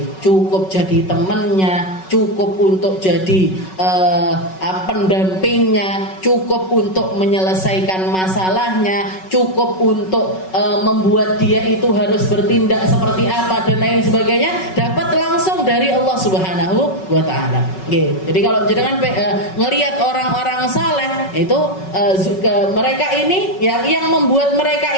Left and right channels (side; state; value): right; late; 5.4 ms